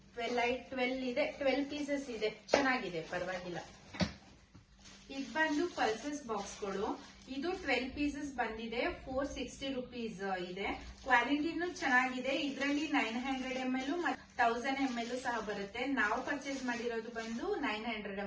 12 ಇದೆ, 12 ಪೀಸಸ್ ಇದೆ, ಚೆನ್ನಾಗಿದೆ, ಪರವಾಗಿಲ್ಲ. ಇದು ಬಂದು ಪಲ್ಸಸ್ ಬಾಕ್ಸ್ಗಳು. ಇದು 12 ಪೀಸಸ್ ಬಂದಿದೆ. 460 rupees ಇದೆ. ಕ್ವಾಲಿಟಿನೂ ಚೆನ್ನಾಗಿದೆ. ಇದರಲ್ಲಿ 900 ml ಮತ್ತು 1000 ml ಸಹ ಬರುತ್ತೆ. ನಾವು ಪರ್ಚೇಸ್ ಮಾಡಿರೋದು ಬಂದು 900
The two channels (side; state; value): both; identical; correlation 1.00